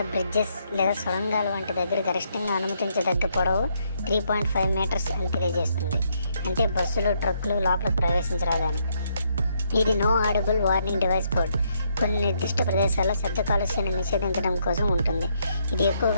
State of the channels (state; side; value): inverted; both; correlation -0.74